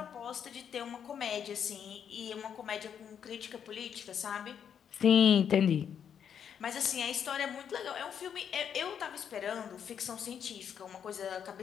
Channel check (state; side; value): quieter; right; 8.2 dB